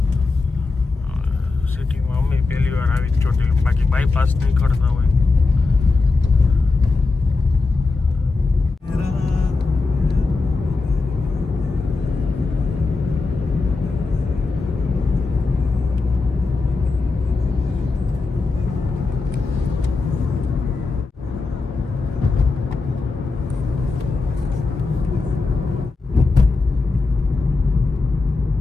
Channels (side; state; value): right; quieter; 3.9 dB